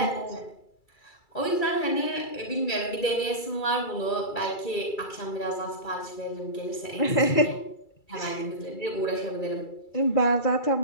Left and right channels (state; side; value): late; right; 2.3 ms